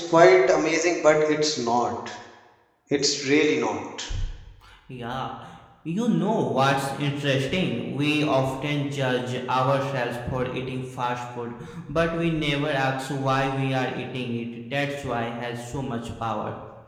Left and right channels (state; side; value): identical; both; correlation 1.00